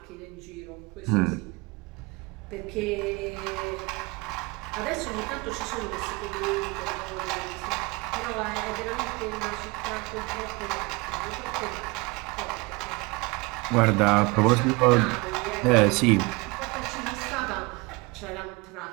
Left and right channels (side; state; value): left; quieter; 25.9 dB